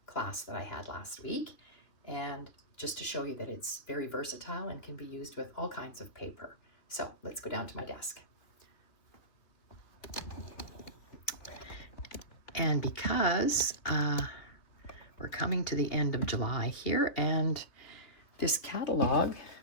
class that I had last week, and just to show you that it's very versatile and can be used with all kinds of paper. So let's go down to my desk. And because we're coming to the end of July here, and this catalog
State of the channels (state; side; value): late; right; 3.1 ms